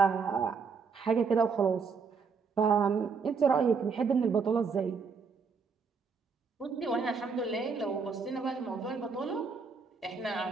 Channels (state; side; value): quieter; left; 5.3 dB